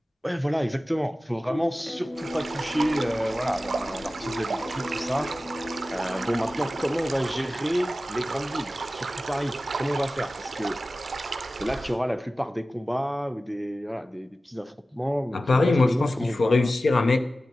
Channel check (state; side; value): normal; both; correlation 0.95